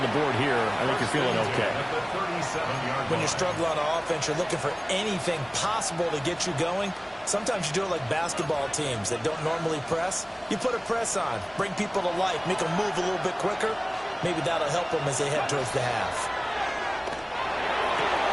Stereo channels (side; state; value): both; identical; correlation 1.00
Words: the board here. I think you're feeling okay. When you're struggling on offense, you're looking for anything possible to get you going. Sometimes you do it like basketball teams that don't normally press. You put a press on, bring people to life, make them move a little bit quicker. Maybe that'll help them as they head towards the half.